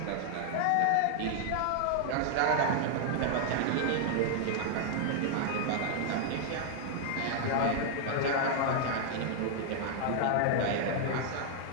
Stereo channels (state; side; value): different; both; correlation 0.00